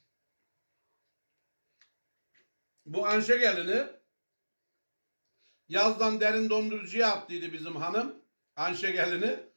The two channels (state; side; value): inverted; both; correlation -1.00